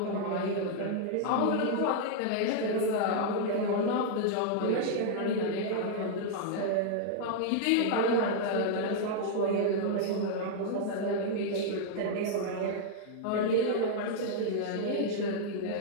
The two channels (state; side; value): different; both; correlation -0.01